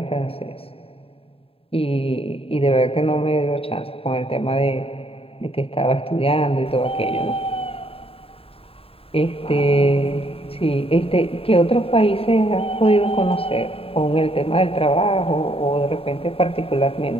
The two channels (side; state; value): right; late; 0.27 ms